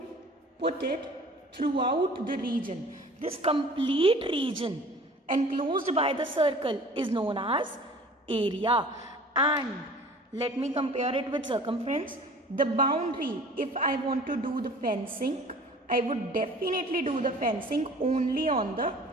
put it throughout the region. This complete region enclosed by the circle is known as area. And let me compare it with circumference. The boundary, if I want to do the fencing, I would definitely do the fencing only on the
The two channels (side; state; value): both; normal; correlation 0.46